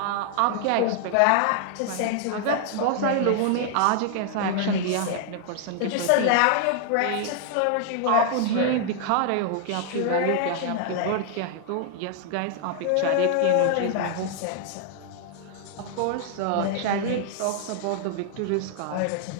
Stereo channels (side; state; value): both; different; correlation 0.00